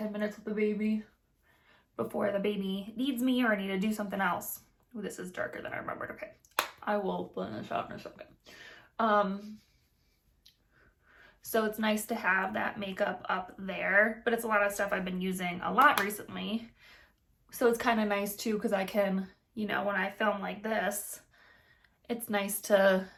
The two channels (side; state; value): both; identical; correlation 1.00